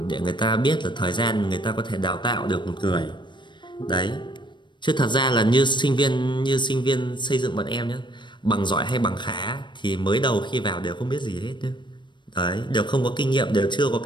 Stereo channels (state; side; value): late; right; 0.22 ms